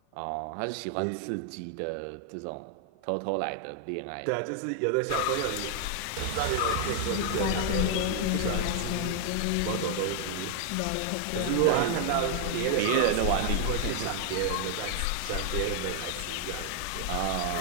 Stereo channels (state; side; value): different; both; correlation 0.00